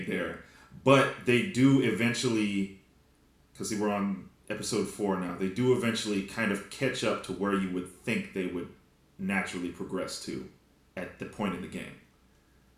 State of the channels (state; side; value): identical; both; correlation 1.00